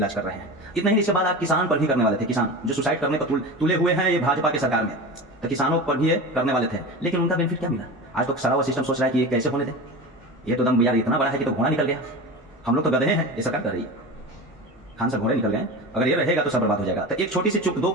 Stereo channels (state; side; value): normal; both; correlation 0.29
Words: कर रहे हैं। इतना ही, इसके बाद आप किसान पर भी करने वाले थे। किसान जो सुसाइड करने पर तुले हुए हैं ये भाजपा की सरकार में, तो किसानों पर भी ये करने वाले थे, लेकिन उनका बेनिफिट क्या मिला। आज तो सारा वो सिस्टम सोच रहा है कि ये कैसे होने दे, ये तो दम यार इतना बड़ा है कि तो घोड़ा निकल गया। हम लोग तो गधे हैं, ये सरकार कर रही है। खान सर घोड़े निकल गए, अगर ये रहेगा तो सब बर्बाद हो जाएगा। तो एक छोटी सी चुप, दो